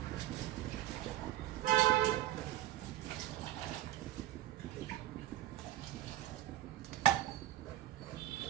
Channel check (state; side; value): quieter; left; 14.7 dB